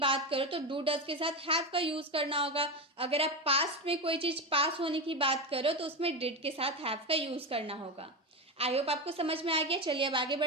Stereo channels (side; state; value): both; normal; correlation 0.17